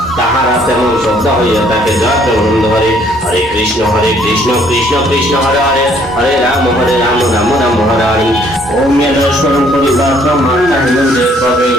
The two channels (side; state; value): both; normal; correlation 0.63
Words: তাহারা তেমন শ্রদ্ধা হইয়া তাকে যত আনন্দ করে। হরে কৃষ্ণ কৃষ্ণ কৃষ্ণ হরে হরে হরে রাম রাম হরে হরে। ওম স্মরণ পরিবার মাতা হিন্দে কবে